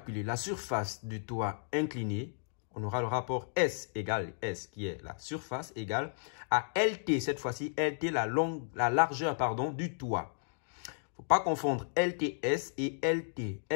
la surface du toit incliné, on aura le rapport S égale S, qui est la surface égale à LT. Cette fois-ci, LT, la largeur du toit. Il ne faut pas confondre LTS et LT.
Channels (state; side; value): silent; right; digital silence